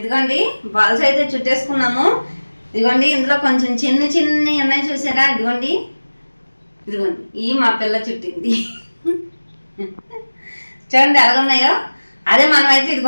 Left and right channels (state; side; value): inverted; both; correlation -1.00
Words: బాల్స్ అయితే చుట్టేసుకున్నాము. ఇదిగోండి ఇందులో కొంచెం చిన్ని ఉన్నాయి చూసారా, ఇదిగోండి ఈ మా పిల్ల చుట్టింది. చూడండి ఎలా ఉన్నాయో. అదే మనమైతే